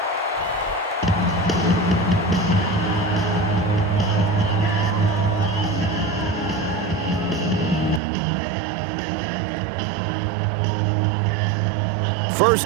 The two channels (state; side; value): drops out; left; at 8.0 s